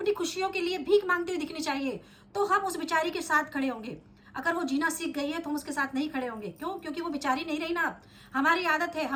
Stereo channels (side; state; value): both; identical; correlation 1.00